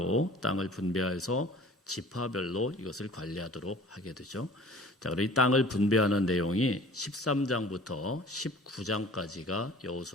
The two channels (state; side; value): normal; both; correlation 0.47